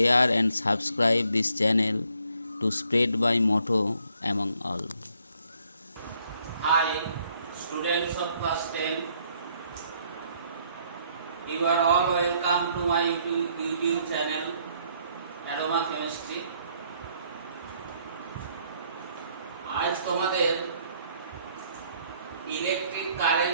and subscribe this channel to spread my motto among all. Hi, students of class 10. You are all welcome to my YouTube channel Aroma Chemistry. আজ তোমাদের electric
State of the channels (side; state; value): both; inverted; correlation -0.68